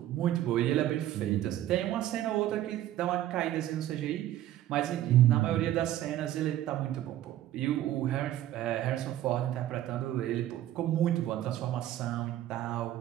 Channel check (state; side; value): quieter; left; 13.2 dB